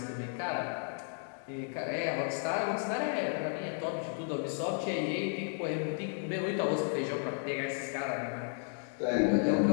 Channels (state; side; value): silent; right; 55 dB below the other